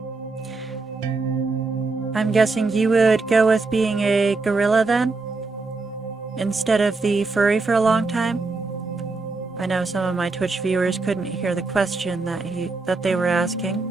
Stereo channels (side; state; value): left; quieter; 3.7 dB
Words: I'm guessing you would go with being a gorilla then? Instead of the furry for a long time? I know some of my Twitch viewers couldn't hear the question that they were asking.